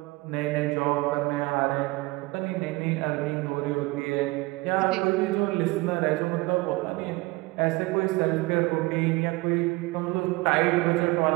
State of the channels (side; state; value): left; quieter; 22.7 dB